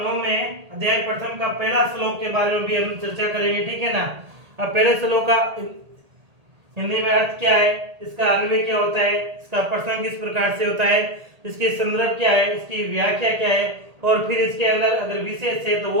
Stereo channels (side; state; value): left; late; 1.8 ms